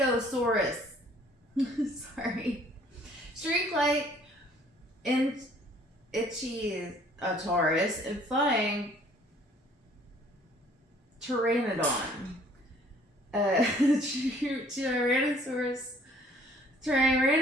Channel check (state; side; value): normal; both; correlation 0.57